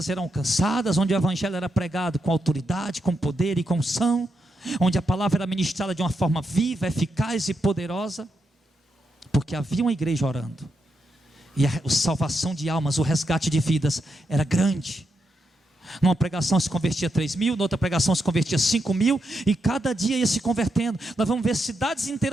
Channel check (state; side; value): normal; both; correlation 0.84